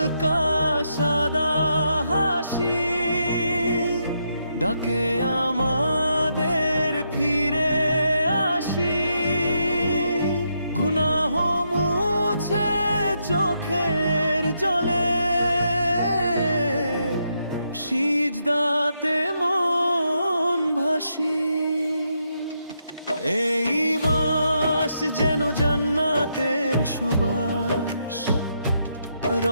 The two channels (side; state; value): both; inverted; correlation -0.80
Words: সাদা হাসি ডাকে আমাদের ফিরে আসি। গুনাহ মুছে চোখের জলে, সিজদাতে মন ভাসি। এই মাস যেন জান্নাতের সুবাস,